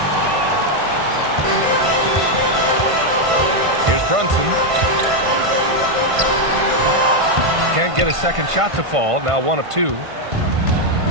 Here's Brunson. Can't get a second shot to fall, now 1 of 2.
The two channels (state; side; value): late; left; 1.5 ms